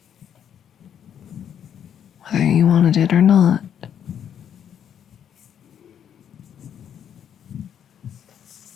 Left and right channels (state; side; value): quieter; right; 9.0 dB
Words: whether you wanted it or not.